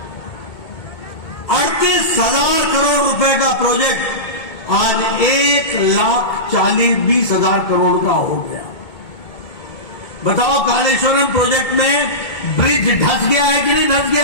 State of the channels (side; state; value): right; late; 2.2 ms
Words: 38,000 करोड़ रुपए का प्रोजेक्ट आज 1,40,20,000 करोड़ का हो गया। बताओ, कालेश्वरम प्रोजेक्ट में ब्रिज धस गया है कि नहीं धस